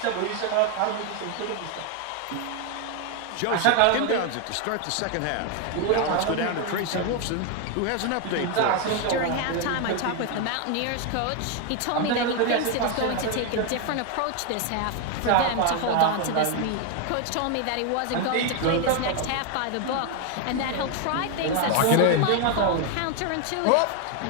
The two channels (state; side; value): different; both; correlation 0.01